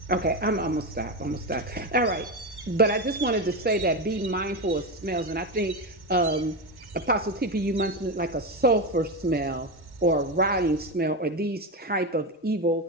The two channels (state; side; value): normal; both; correlation 0.14